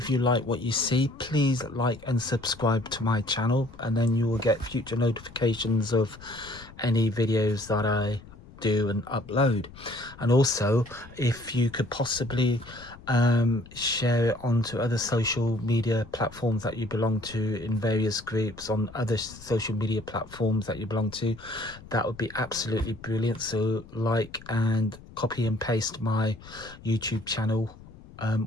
you like what you see, please like and subscribe to my channel, and then you will get future notifications of any videos that I do and upload. And also, if you could possibly share it onto other social media platforms that you belong to, in various groups on other social media platforms that you belong to, that would be absolutely brilliant. So like and copy and paste my YouTube channel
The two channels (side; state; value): left; noise; rumble, 19 dB below the sound